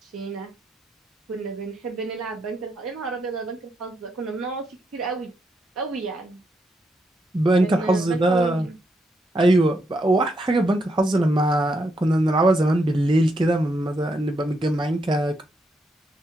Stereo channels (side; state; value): both; normal; correlation 0.80